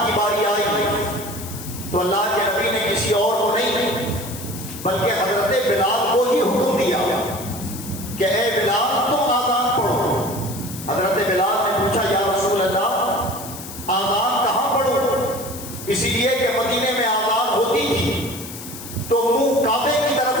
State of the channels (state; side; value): noise; left; hiss, 12 dB below the sound